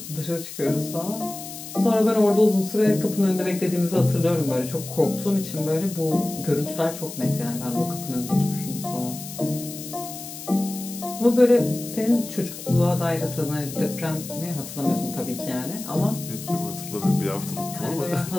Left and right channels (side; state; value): left; noise; hiss, 11 dB below the sound